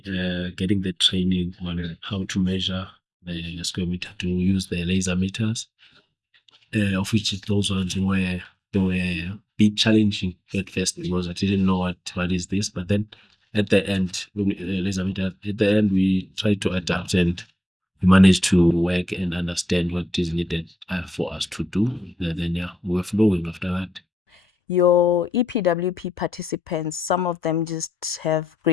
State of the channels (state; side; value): normal; both; correlation 0.87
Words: getting the training on how to measure the square meter, to use the laser meters, of which those ones were a bit challenging at first because I didn't know what is this, but then at the end, we tried to adapt and we managed to work and understand what is needed for us to do. Then we're flowing after that. Your EPWP participants, some of them just have